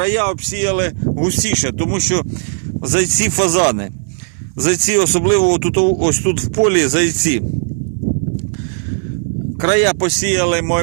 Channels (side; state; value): left; silent; 64 dB below the other